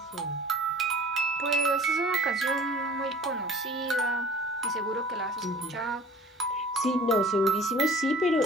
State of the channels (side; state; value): both; normal; correlation 0.48